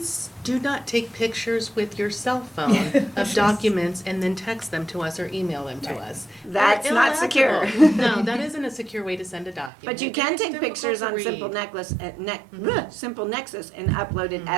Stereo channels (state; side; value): drops out; left; at 9.7 s